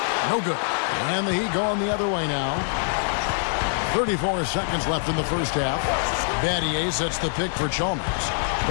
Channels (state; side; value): silent; right; digital silence